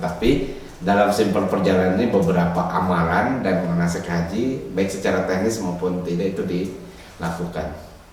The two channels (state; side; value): identical; both; correlation 1.00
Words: dalam simple perjalanan ini beberapa amalan dan manasik haji, baik secara teknis maupun tidak, itu dilakukan.